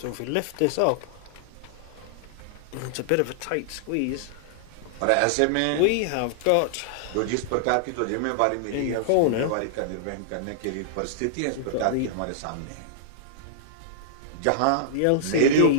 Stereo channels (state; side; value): different; both; correlation -0.01